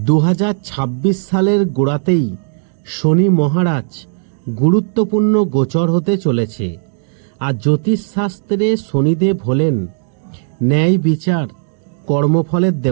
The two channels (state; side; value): silent; left; digital silence